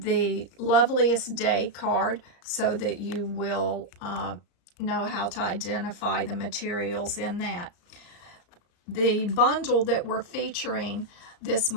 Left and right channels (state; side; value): late; right; 34 ms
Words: Loveliest Day card so that you will know how to identify the materials in that. The bundle that we're featuring this